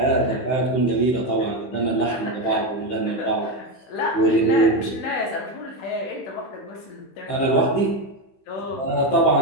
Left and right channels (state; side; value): late; right; 15 ms